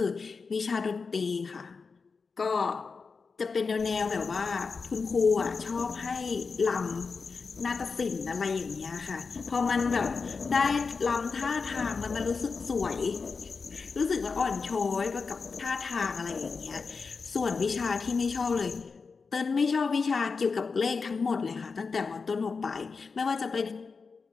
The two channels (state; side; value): quieter; right; 4.8 dB